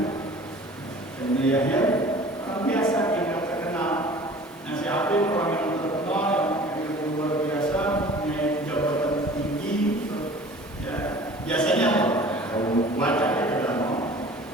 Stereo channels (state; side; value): normal; both; correlation 0.45